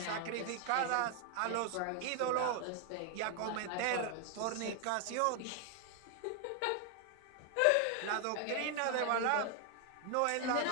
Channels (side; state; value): both; different; correlation 0.00